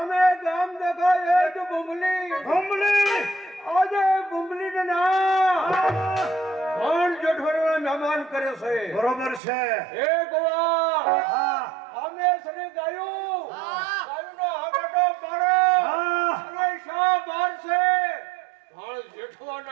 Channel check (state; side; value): drops out; left; at 9.4 s